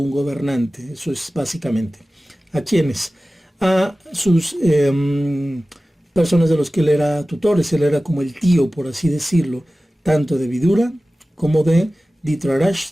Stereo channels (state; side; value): normal; both; correlation 0.96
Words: gobernante. Eso es básicamente. ¿A quiénes? A sus personas de los que él era tutores. Él era como el tío, por así decirlo, tanto de Vidura como de